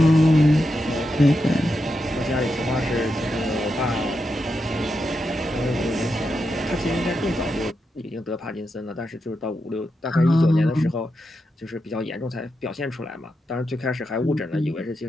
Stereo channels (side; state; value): both; normal; correlation 0.86